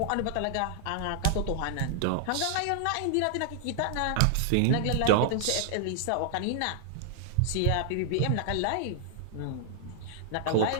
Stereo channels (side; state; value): both; different; correlation 0.00